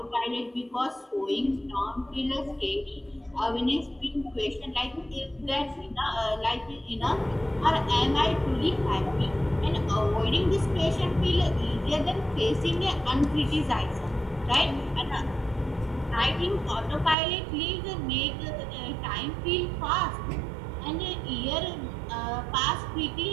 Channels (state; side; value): drops out; left; at 17.2 s